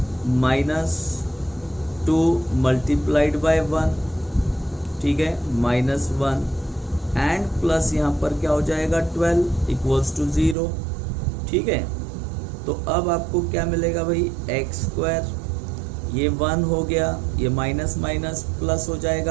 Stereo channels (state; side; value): drops out; left; at 10.6 s